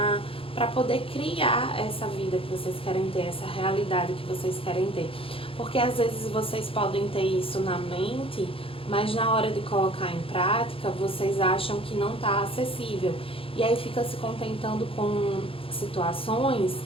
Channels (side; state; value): right; late; 0.27 ms